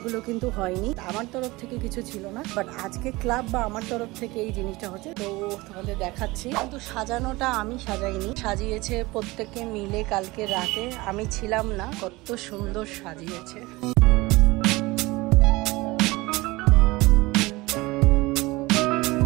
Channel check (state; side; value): quieter; left; 21.5 dB